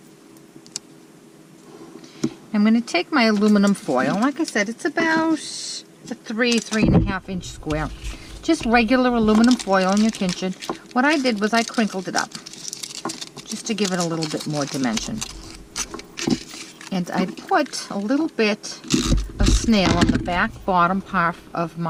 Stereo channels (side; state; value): both; identical; correlation 1.00